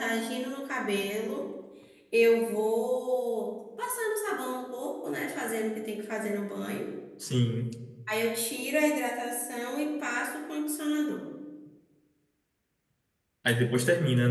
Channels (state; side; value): identical; both; correlation 1.00